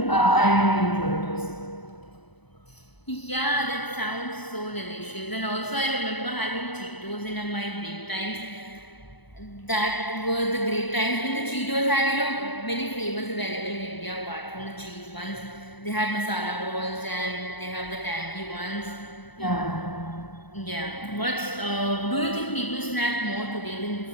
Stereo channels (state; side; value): late; right; 1.0 ms